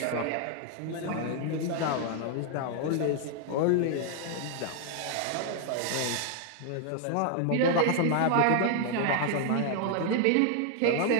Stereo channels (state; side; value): different; both; correlation 0.00